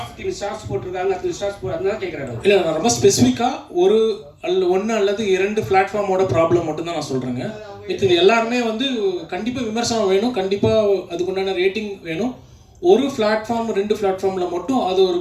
போட்டிருக்காங்க, அது ஸ்டார்ஸ் அதனால கேட்குறாரு. இல்லை, நான் ரொம்ப ஸ்பெசிஃபிக்காக 1 அல்லது 2 பிளாட்ஃபார்மோட ப்ராப்ளம் மட்டும்தான் நான் சொல்கிறேங்க. இது எல்லாருமே வந்து கண்டிப்பாக விமர்சனம் வேணும், கண்டிப்பாக அதுக்குண்டான ரேட்டிங் வேணும். ஒரு பிளாட்ஃபார்ம் 2 பிளாட்ஃபார்மில் மட்டும் அது ஒரு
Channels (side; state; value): both; identical; correlation 1.00